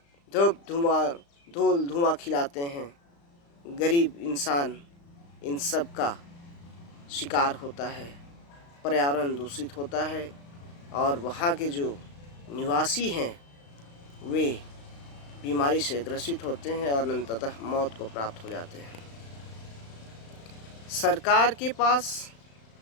धूल धुआं खिलाते हैं। गरीब इंसान इन सब का शिकार होता है, पर्यावरण दूषित होता है और वहाँ के जो निवासी हैं वे बीमारी से ग्रसित होते हैं और अंततः मौत को प्राप्त हो जाते हैं। सरकार के पास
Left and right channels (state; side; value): late; right; 35 ms